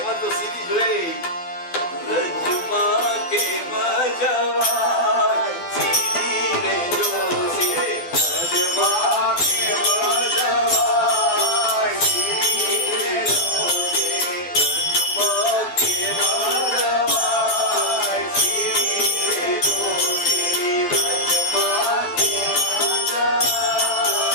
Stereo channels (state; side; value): late; right; 12 ms